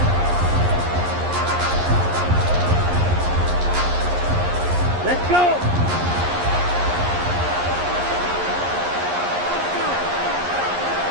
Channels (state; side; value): late; left; 11 ms